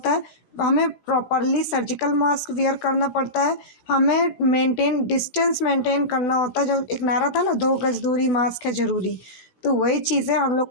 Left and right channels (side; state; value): right; late; 17 ms